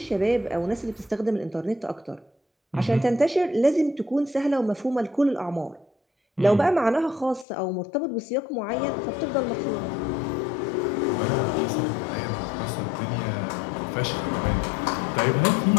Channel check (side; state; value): right; drops out; at 7.5 s